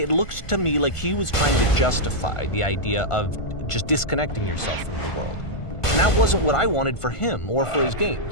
looked to me like he was trying to justify the idea of just disconnecting yourself from the world. And that wasn't what I wanted for him or for his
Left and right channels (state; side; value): late; right; 1.5 ms